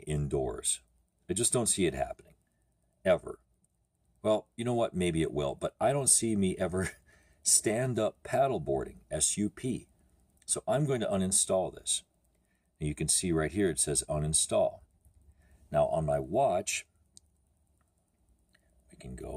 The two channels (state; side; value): identical; both; correlation 1.00